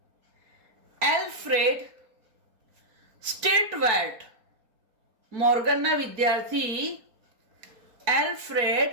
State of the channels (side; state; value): left; late; 4.2 ms